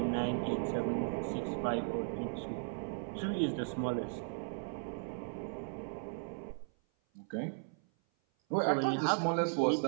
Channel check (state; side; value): silent; left; 53 dB below the other